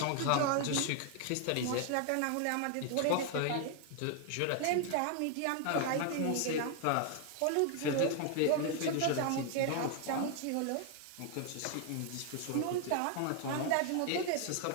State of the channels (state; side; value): different; both; correlation 0.00